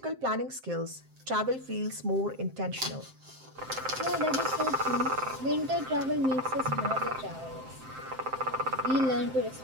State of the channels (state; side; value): late; left; 7.6 ms